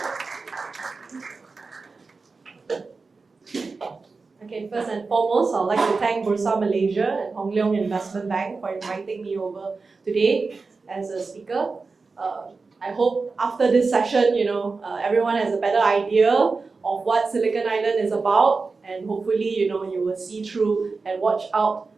Okay, first and foremost, I'd like to thank Bursa Malaysia and Hong Leong Investment Bank for inviting me over today as a speaker. I hope after this session, everyone has a better idea of what Silicon Island is about, and hopefully, you will see through and watch out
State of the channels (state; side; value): quieter; left; 4.2 dB